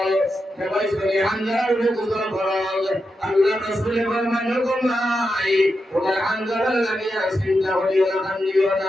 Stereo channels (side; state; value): both; normal; correlation 0.87